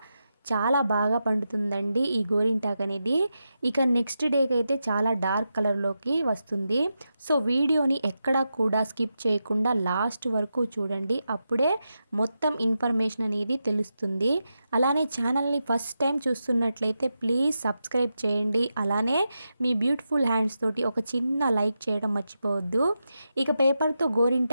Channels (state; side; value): inverted; both; correlation -0.88